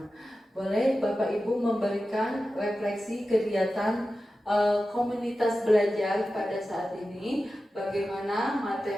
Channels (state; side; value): normal; both; correlation 0.93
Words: Boleh Bapak Ibu memberikan refleksi kegiatan komunitas belajar pada saat ini, bagaimana